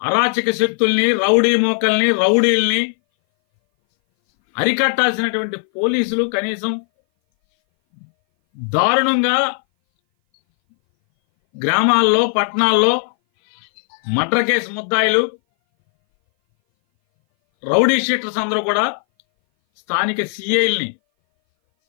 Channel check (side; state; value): right; silent; 60 dB below the other